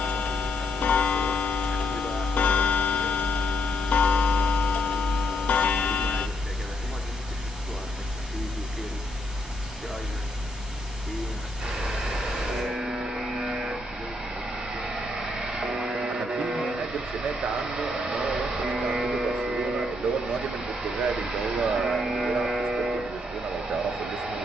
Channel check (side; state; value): both; normal; correlation 0.75